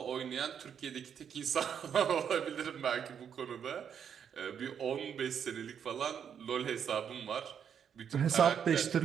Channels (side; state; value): left; quieter; 8.0 dB